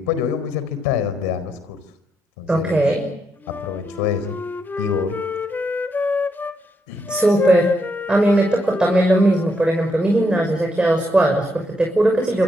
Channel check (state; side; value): normal; both; correlation 0.79